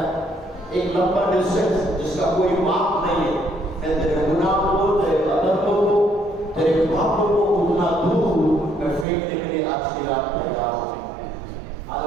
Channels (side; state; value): left; drops out; at 9.1 s